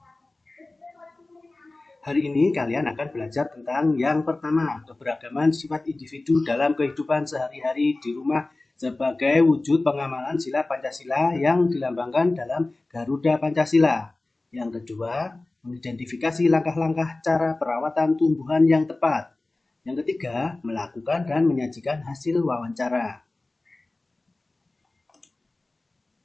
Hari ini kalian akan belajar tentang yang pertama, keberagaman sifat individu dalam kehidupan sehari-hari di rumah sebagai wujud pengamalan sila Pancasila yang dilambangkan dalam Garuda Pancasila. Yang kedua, mengidentifikasi langkah-langkah cara perawatan tumbuhan yang tepat. Yang ketiga, melakukan dan menyajikan hasil wawancara.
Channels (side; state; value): right; quieter; 3.0 dB